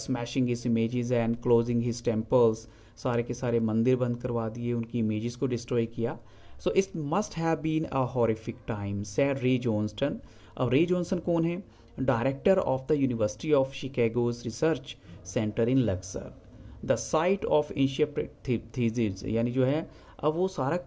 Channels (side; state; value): both; identical; correlation 1.00